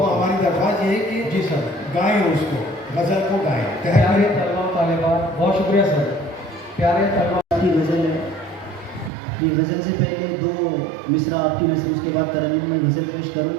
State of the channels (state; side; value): drops out; left; at 9.1 s